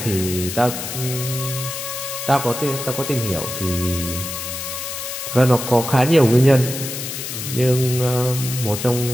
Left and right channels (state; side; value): noise; left; hiss, 6 dB below the sound